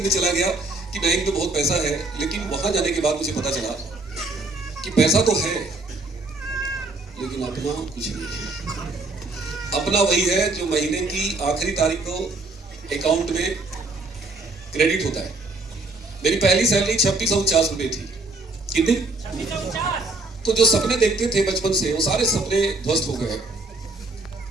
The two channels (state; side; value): quieter; left; 3.1 dB